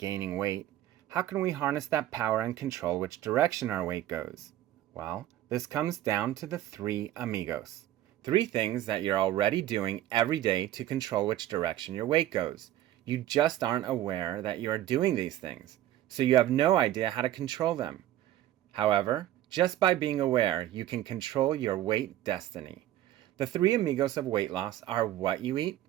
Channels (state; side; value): quieter; left; 13.2 dB